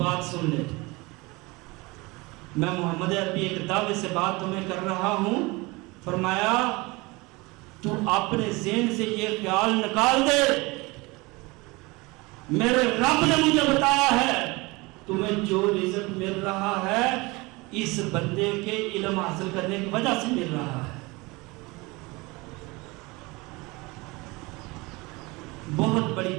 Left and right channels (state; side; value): quieter; left; 24.2 dB